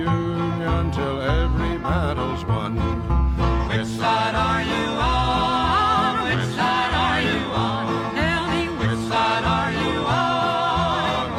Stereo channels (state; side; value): identical; both; correlation 1.00